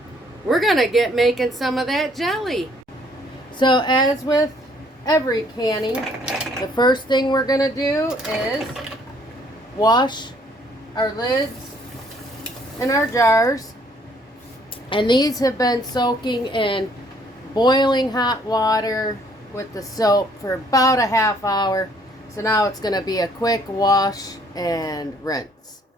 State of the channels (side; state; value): both; normal; correlation 0.63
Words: we're gonna get making some of that jelly. So as with every canning, the first thing we're going to do is wash our lids and our jars. And these have been soaking in boiling hot water with the soap for about a half hour. So now it's going to be a quick wash and rinse.